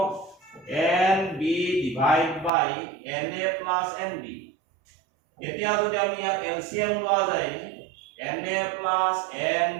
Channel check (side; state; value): left; drops out; at 2.5 s